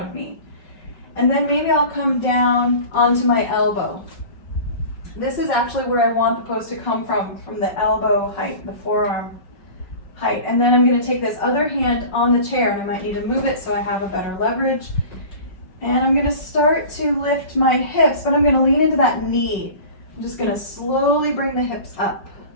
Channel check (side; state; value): right; late; 5.4 ms